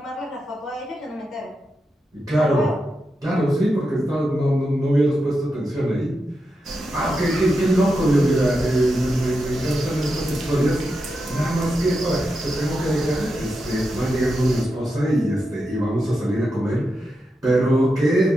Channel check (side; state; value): both; normal; correlation 0.87